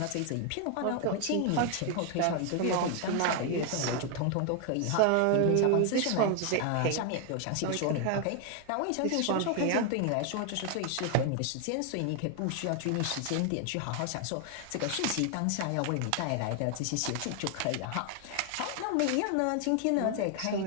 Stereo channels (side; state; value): both; different; correlation 0.00